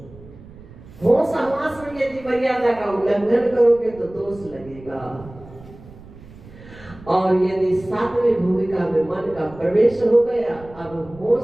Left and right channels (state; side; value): noise; right; rumble, 20 dB below the sound